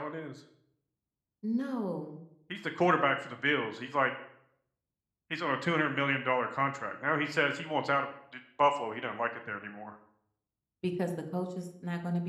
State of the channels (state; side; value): identical; both; correlation 1.00